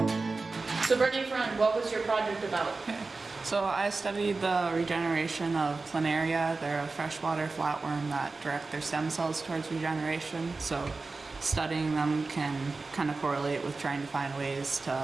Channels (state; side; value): quieter; left; 3.8 dB